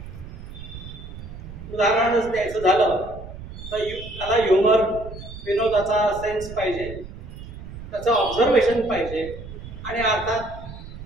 उदाहरणच द्यायचं झालं तर त्याला ह्युमर, विनोदाचा सेन्स पाहिजे, त्याचं ऑब्झर्वेशन पाहिजे आणि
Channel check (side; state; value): right; noise; rumble, 13 dB below the sound